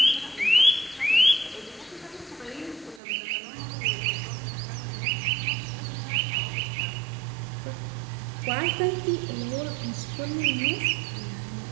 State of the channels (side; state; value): left; drops out; at 3.0 s